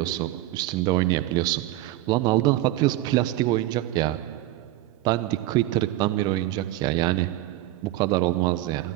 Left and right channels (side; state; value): left; quieter; 15.6 dB